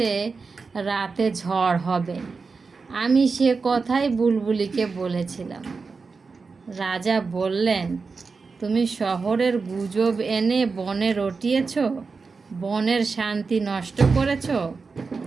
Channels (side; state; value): left; quieter; 4.6 dB